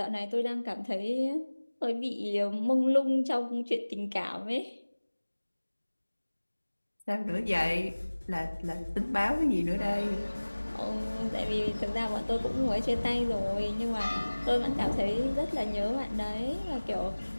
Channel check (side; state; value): both; inverted; correlation -1.00